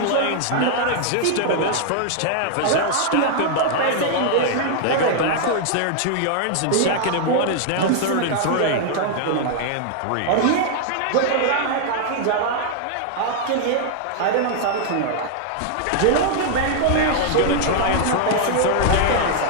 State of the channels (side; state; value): both; different; correlation 0.00